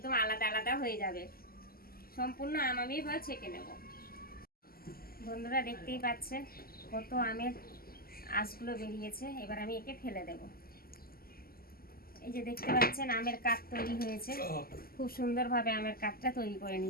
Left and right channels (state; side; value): late; right; 0.43 ms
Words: আলাদা আলাদা হয়ে যাবে। সম্পূর্ণ আম আমি এবার ছেঁকে নেব। বন্ধুরা, দেখতেই পাচ্ছেন কত আমের আঁশগুলো বেরিয়েছে। এবার আমি একে ফেলে দেব। এই যে দেখতে পাচ্ছেন আমের কাঠ তৈরি হয়েছে, খুব সুন্দরভাবে আমের কাঠটা তৈরি করে